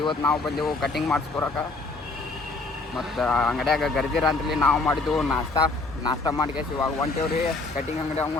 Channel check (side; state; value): right; quieter; 3.4 dB